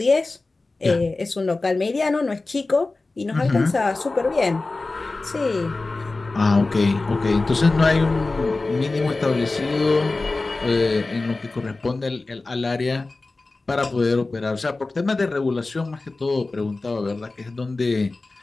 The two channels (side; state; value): right; quieter; 3.4 dB